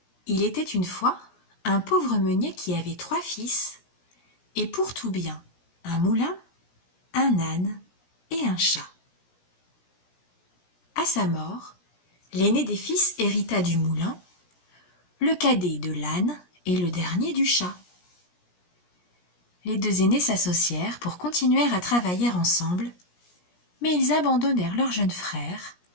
Il était une fois un pauvre meunier qui avait 3 fils, et pour tout bien, un moulin, un âne et un chat. À sa mort, l'aîné des fils hérita du moulin, le cadet de l'âne et le dernier du chat. Les 2 aînés s'associèrent pour continuer à travailler ensemble, mais ils abandonnèrent leur jeune frère,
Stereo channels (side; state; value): right; late; 17 ms